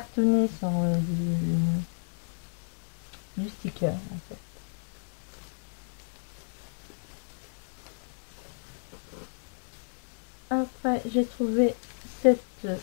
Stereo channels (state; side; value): silent; right; digital silence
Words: sur du sticker en fait. Après j'ai trouvé cette